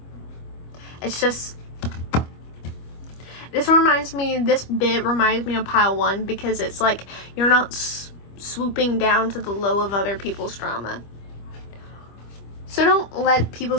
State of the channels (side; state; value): right; late; 25 ms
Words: It's just, this bit reminds me of pile 1 because it's like you're not swooping down to the low of other people's drama. So don't let